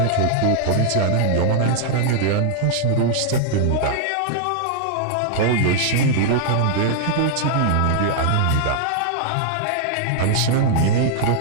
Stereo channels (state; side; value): different; both; correlation 0.00